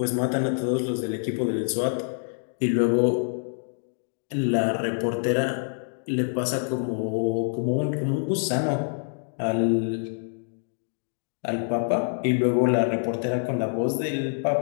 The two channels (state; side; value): silent; right; digital silence